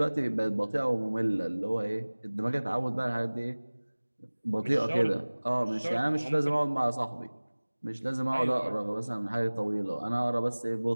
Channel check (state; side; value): inverted; both; correlation -1.00